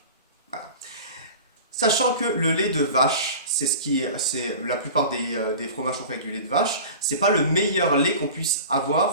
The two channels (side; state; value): both; inverted; correlation -0.37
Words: Voilà. Sachant que le lait de vache, c'est la plupart des fromages sont faits avec du lait de vache, c'est pas le meilleur lait qu'on puisse